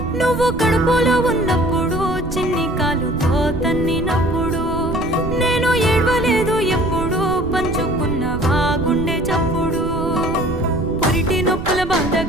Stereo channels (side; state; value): right; noise; rumble, 8 dB below the sound